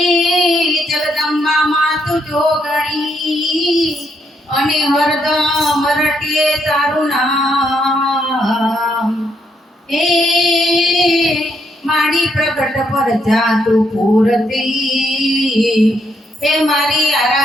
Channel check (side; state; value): both; normal; correlation 0.75